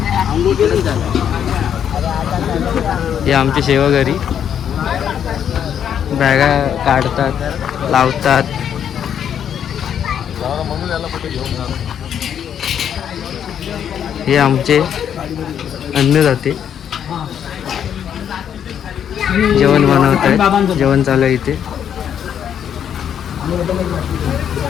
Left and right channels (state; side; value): quieter; right; 8.9 dB